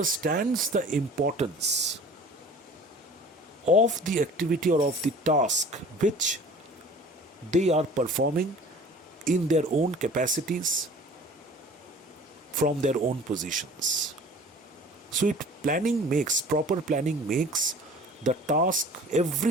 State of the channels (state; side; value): normal; both; correlation 0.46